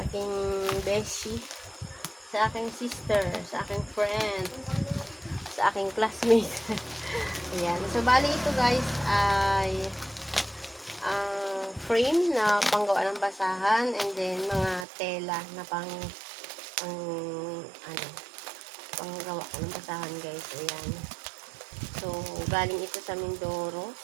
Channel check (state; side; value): drops out; left; at 14.9 s